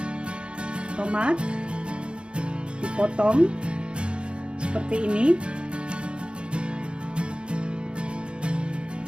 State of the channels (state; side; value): late; left; 0.055 ms